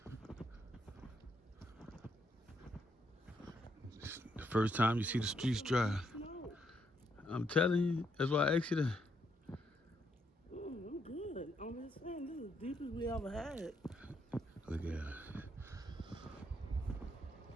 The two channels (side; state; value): both; normal; correlation 0.75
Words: The first time you see the streets dry. I'm telling you, that's why I asked you to. I'm good. I'm just saying, this is the deepest we ever had. Look at it.